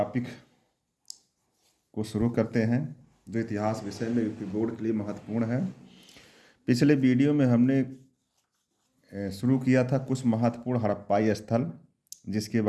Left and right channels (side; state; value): both; identical; correlation 1.00